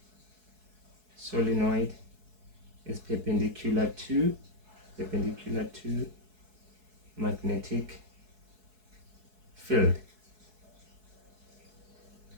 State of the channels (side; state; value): left; late; 4.7 ms